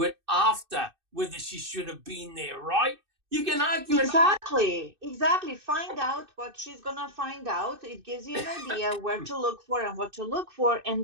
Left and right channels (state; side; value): late; left; 2.6 ms